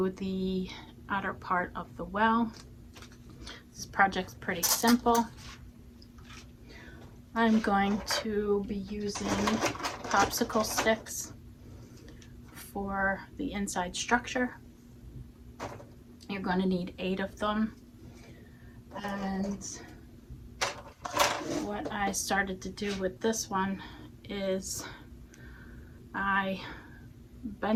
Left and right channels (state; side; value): identical; both; correlation 1.00